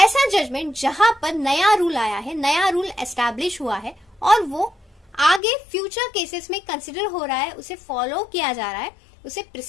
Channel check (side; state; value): right; drops out; at 5.4 s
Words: जजमेंट जहां पर नया रूल आया है, नया रूल एस्टैब्लिश हुआ है और वो आगे फ्यूचर केसेस में कंसिडर हो रहा है, उसे फॉलो किया जा रहा है, उसे